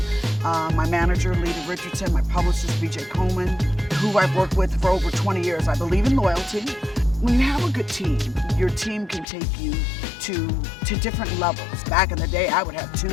My manager, Lita Richardson, my publicist, BJ Coleman, who I've worked with for over 20 years. I believe in loyalty. When you have a good team, your team can take you to different levels. Back in the day, I would have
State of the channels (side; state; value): right; drops out; at 9.2 s